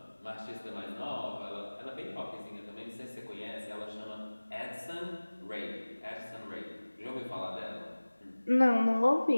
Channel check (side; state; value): both; inverted; correlation -1.00